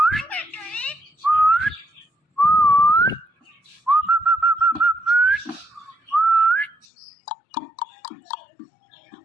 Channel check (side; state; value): right; drops out; at 6.9 s